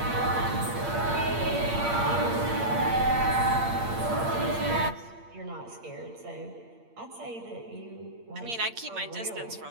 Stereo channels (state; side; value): late; left; 8.7 ms